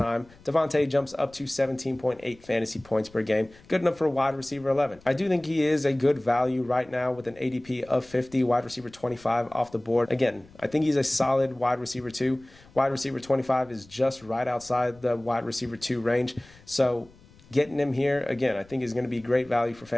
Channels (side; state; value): left; noise; rumble, 26 dB below the sound